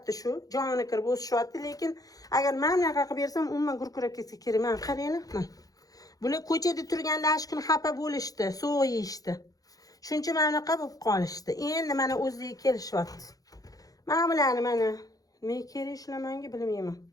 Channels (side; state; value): right; late; 0.17 ms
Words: shu. Joni kirib o'sishyapti, lekin agar men bunaqa qilib bersam umuman gurkurab ketsa kerak. Mana qaranglar. Bular ko'chada turganda ash kun xafa bo'lishdi, sovuq yeyishdi. Shuncha mana bo'lib qolishdi. Endi mana o'ziga kelishyapti. Mana bularni mana men kerak ishlamanga bilmayman.